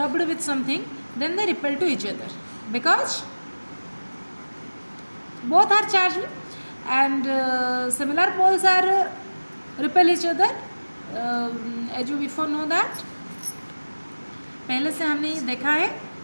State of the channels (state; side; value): inverted; both; correlation -1.00